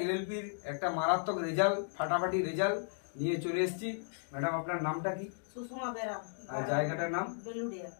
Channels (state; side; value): silent; right; digital silence